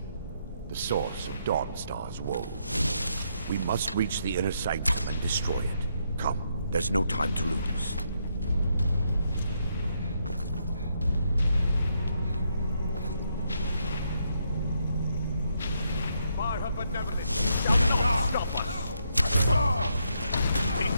the source of Dawnstar's woe. We must reach the inner sanctum and destroy it. Come, there's no time to lose. By her benevolence, stop us! Be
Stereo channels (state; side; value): inverted; both; correlation -0.77